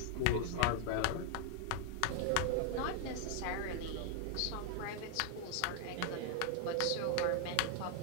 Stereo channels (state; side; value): different; both; correlation 0.00